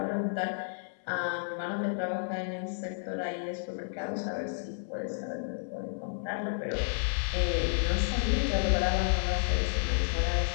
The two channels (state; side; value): silent; right; 57 dB below the other